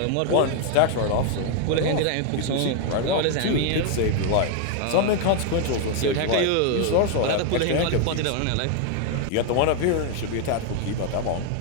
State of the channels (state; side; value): different; both; correlation 0.01